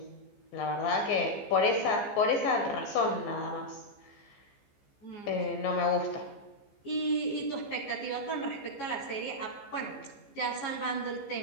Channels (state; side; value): late; right; 15 ms